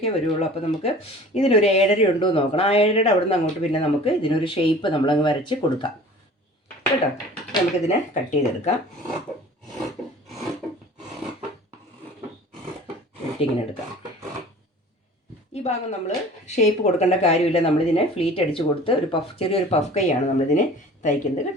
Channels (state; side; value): normal; both; correlation 0.45